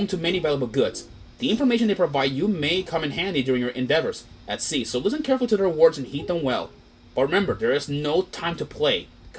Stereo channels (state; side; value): identical; both; correlation 1.00